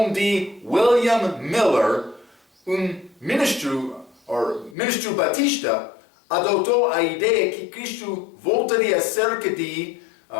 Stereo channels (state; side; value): drops out; right; at 4.8 s